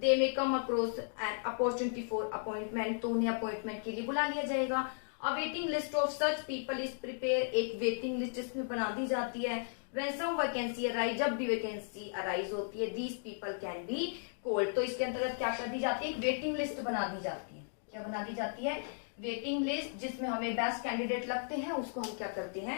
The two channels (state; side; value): silent; right; digital silence